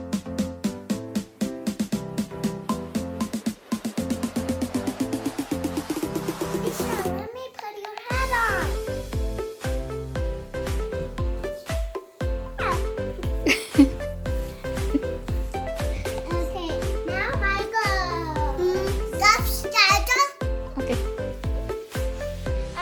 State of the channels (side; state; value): both; identical; correlation 1.00